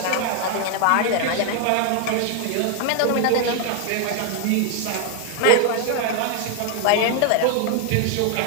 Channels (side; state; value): both; different; correlation 0.01